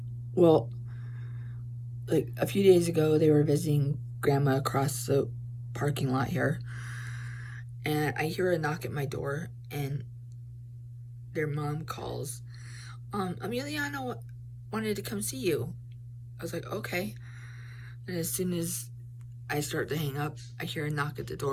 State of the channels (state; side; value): identical; both; correlation 1.00